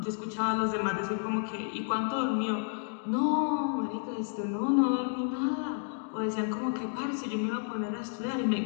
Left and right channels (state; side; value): silent; right; 57 dB below the other